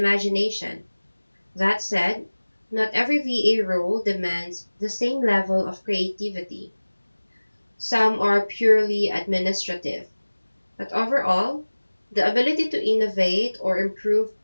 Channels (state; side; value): inverted; both; correlation -1.00